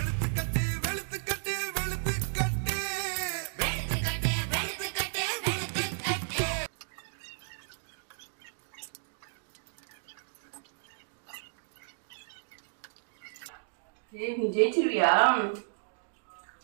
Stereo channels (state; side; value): silent; left; digital silence